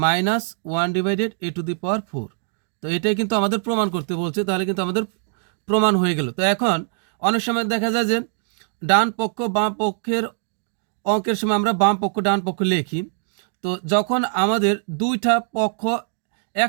-1/a⁴। তো এটাই কিন্তু আমাদের প্রমাণ করতে বলছে, তাহলে কিন্তু আমাদের প্রমাণ হয়ে গেল। তো এখন অনেক সময় দেখা যায় যে ডান পক্ষ বাম পক্ষের অঙ্কের সময় আমরা বাম পক্ষ ডান পক্ষ লিখি, তো যখন আমাদের দুইটা পক্ষ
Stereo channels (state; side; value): silent; left; digital silence